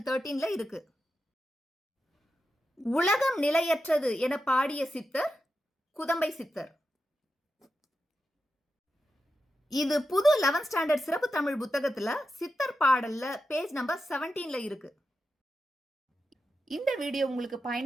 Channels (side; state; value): both; normal; correlation 0.89